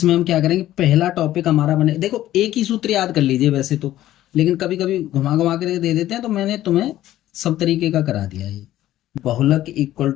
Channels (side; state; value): right; quieter; 13.9 dB